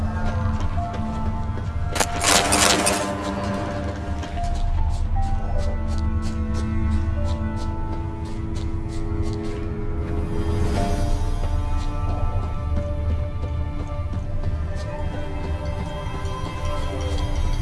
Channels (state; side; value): identical; both; correlation 1.00